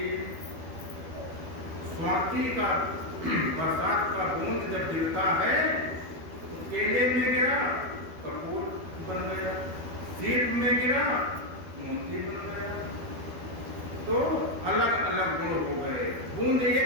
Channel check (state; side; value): late; left; 12 ms